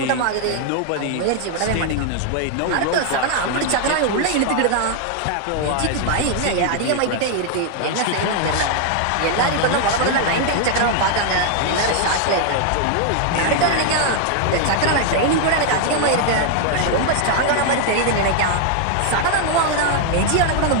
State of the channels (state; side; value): different; both; correlation 0.00